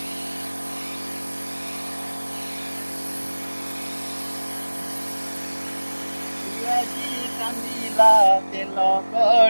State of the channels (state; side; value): inverted; both; correlation -1.00